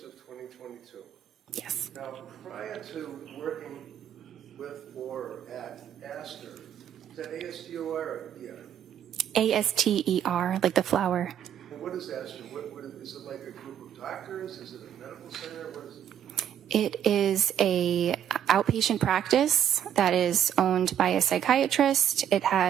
of 2022. Yes. Now, prior to working with or at Astor, is that ASTOR or ER? ASTER, like the flower. And what is Astor? What is it, like a group of doctors? Is it a medical center? What is it? It is a outpatient practice that is owned by a psychiatrist. It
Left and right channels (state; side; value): quieter; left; 9.7 dB